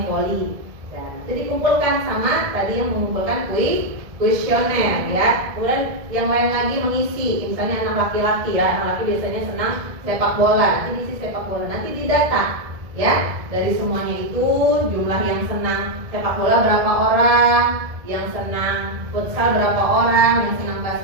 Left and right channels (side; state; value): left; late; 1.7 ms